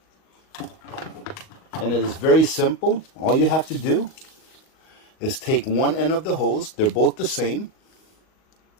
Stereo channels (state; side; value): late; right; 38 ms